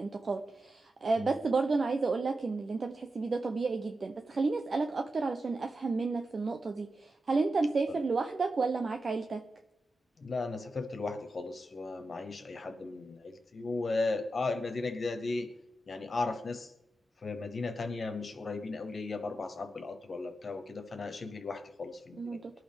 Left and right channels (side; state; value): both; normal; correlation 0.90